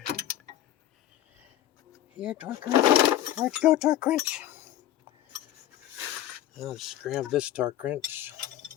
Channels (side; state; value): right; quieter; 12.5 dB